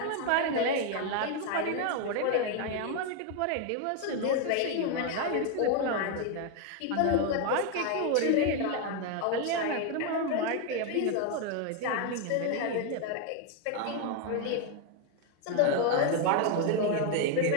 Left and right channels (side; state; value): both; different; correlation 0.01